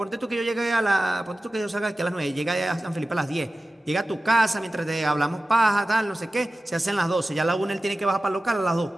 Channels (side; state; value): both; normal; correlation 0.95